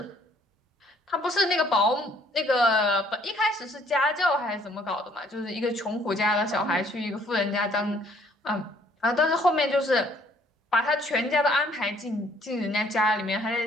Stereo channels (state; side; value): normal; both; correlation 0.62